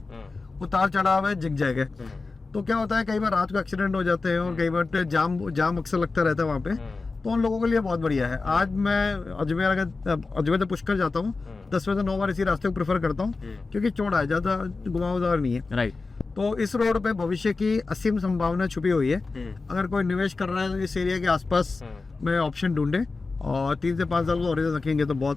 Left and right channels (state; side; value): quieter; right; 3.9 dB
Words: उतार चढ़ाव है, जिग है, तो क्या होता है कई बार रात को एक्सीडेंट हो जाते हैं और कई बार जाम अक्सर लगता रहता है वहाँ पे। तो उन लोगों के लिए बहुत बढ़िया है। आज मैं अजमेर से पुष्कर जाता हूँ, 10 में से 9 बार इसी रास्ते को प्रेफर करता हूँ, क्योंकि चौड़ा है, ज़्यादा घुमावदार नहीं है। राइट। तो इस रोड पे भविष्य की असीम संभावना छुपी हुई है। अगर कोई निवेश कर रहा है तो इस एरिया के आसपास में ऑप्शन ढूंढे, और 3 से 5 साल को और रखेंगे तो